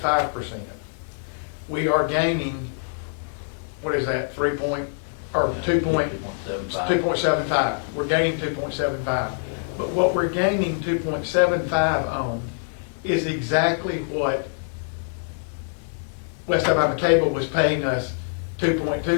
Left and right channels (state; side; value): silent; right; digital silence